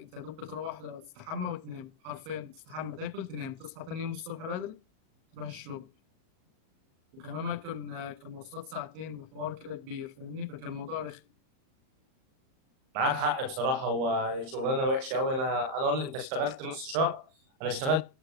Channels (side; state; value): left; late; 38 ms